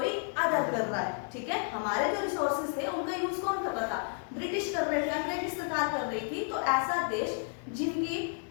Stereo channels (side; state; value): right; silent; 57 dB below the other